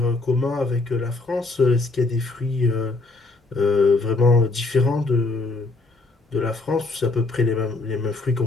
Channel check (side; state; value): right; quieter; 3.3 dB